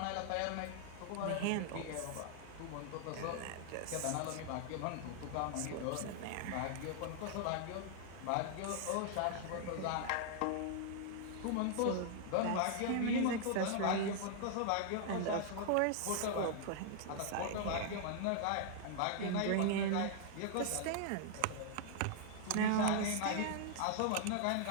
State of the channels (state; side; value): different; both; correlation -0.01